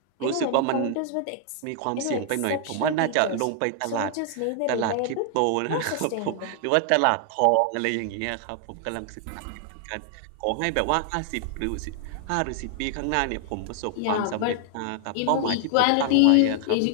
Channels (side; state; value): both; different; correlation 0.00